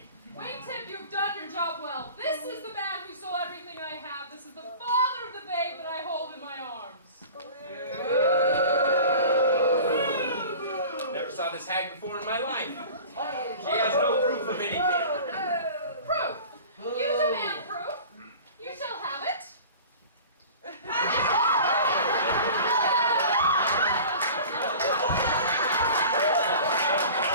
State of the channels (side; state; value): both; inverted; correlation -0.40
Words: Wingtip, you've done your job well. This is the man who stole everything I have. This is the father of the babe that I hold in my arms. Never saw this hag before in my life. She has no proof of anything. Proof? You demand proof. You shall have it.